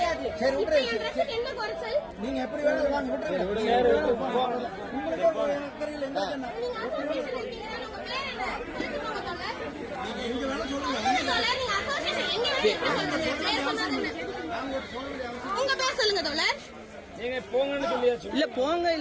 சரி, விட்டுருங்க. என்ன குறைச்சல்? நீங்க எப்படி வேணாலும் வாங்க, விட்டுருங்க. உங்களுக்கு ஒரு தெரியல என்ன சொன்னா? நீங்க அசோசியேஷன் இருக்கீங்க. உங்க பேர் என்ன? சொல்லுங்க தோழர். நீங்க வேணா சொல்லுங்க. தோழர், நீங்க அசோசியேஷன் எங்க உங்க பேர் சொல்லுங்க தோழர். நீங்க போங்கன்னு சொல்லியாச்சு. இல்ல போங்க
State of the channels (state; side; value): identical; both; correlation 1.00